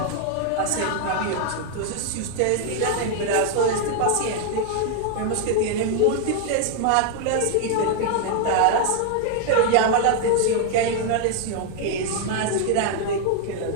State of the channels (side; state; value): both; different; correlation 0.00